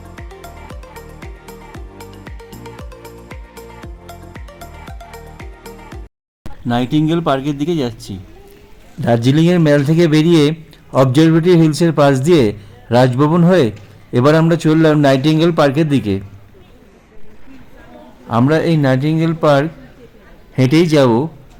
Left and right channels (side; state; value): both; identical; correlation 1.00